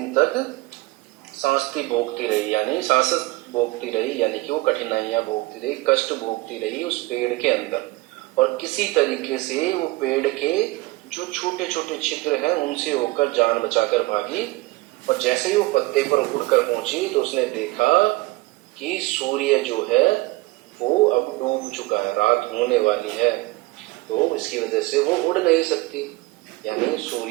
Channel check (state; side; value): quieter; left; 21.5 dB